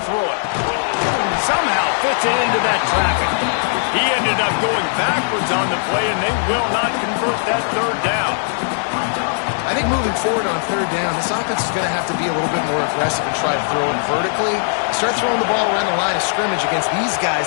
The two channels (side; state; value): right; silent; digital silence